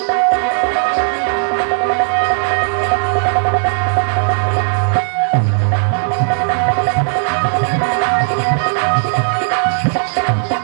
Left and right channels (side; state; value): left; silent; 68 dB below the other